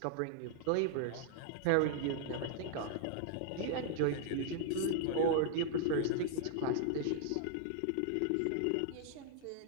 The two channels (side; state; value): both; different; correlation -0.01